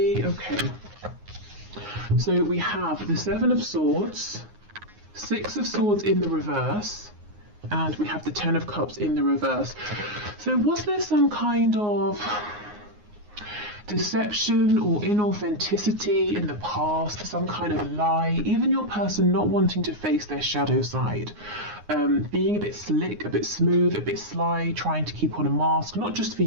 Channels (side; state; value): left; late; 9.6 ms